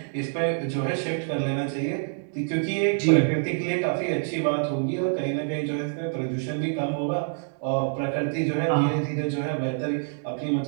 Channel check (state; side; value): silent; left; digital silence